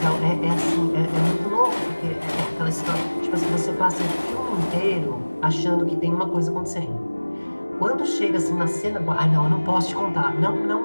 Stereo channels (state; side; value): inverted; both; correlation -1.00